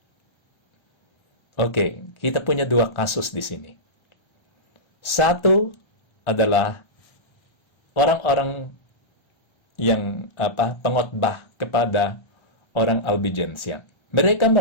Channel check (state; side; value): late; right; 1.3 ms